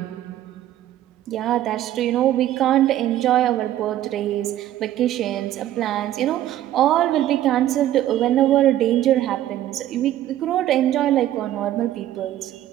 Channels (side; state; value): left; quieter; 12.9 dB